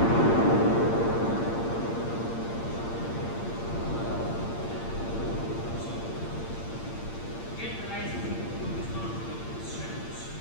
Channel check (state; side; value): late; right; 8.7 ms